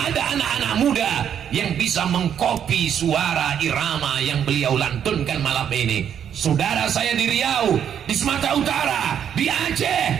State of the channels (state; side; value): quieter; left; 8.9 dB